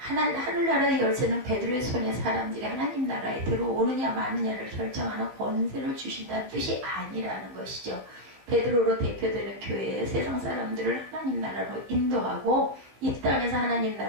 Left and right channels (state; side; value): late; left; 16 ms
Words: 열쇠는 베드로의 손에 사람들이 하나님 나라에 들어오느냐 마느냐를 결정하는 권세를 주신다는 뜻이 아니라는 것이죠. 베드로로 대표되는 교회에 세상 사람들을 하나님 나라로 인도하고 이 땅에서 하나님